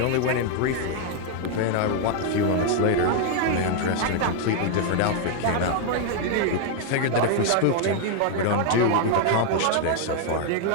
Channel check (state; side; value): different; both; correlation 0.00